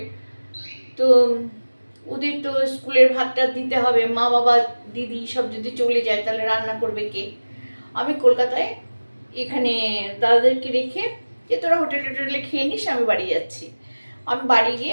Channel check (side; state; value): both; inverted; correlation -1.00